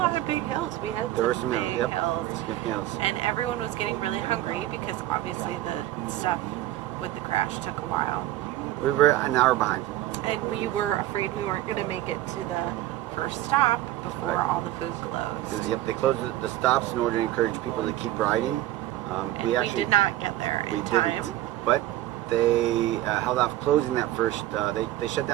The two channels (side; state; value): left; quieter; 14.6 dB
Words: of big hills. We had some big hills, and everyone was getting really hungry because obviously the stuff with the crash took a while. We were an hour behind. And we were afraid we weren't going to make it to the first stop before all the food closed. Yep, they closed the stops in order to encourage people to keep riding. And we did not get there in time. But they held off closing that first. They shut